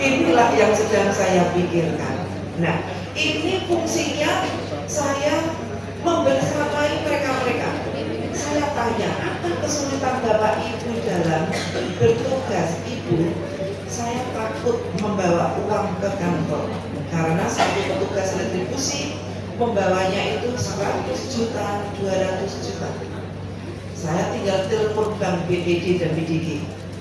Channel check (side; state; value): both; identical; correlation 1.00